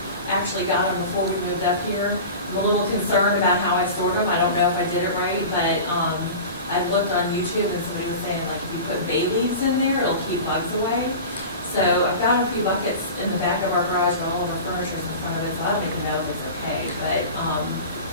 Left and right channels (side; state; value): both; inverted; correlation -0.34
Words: actually got them before we moved up here. I'm a little concerned about how I stored them. I don't know if I did it right, but I looked on YouTube and somebody was saying like if you put bay leaves in there, it'll keep bugs away. So I've got a few buckets in the back of our garage where all of our furniture is in front of it, so I don't even know if it's okay. But